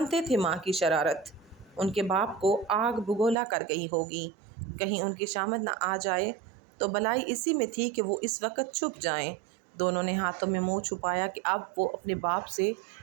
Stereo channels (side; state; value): left; drops out; at 3.4 s